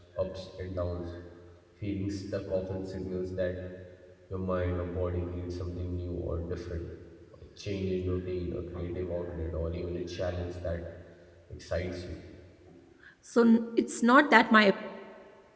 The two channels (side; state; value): both; identical; correlation 1.00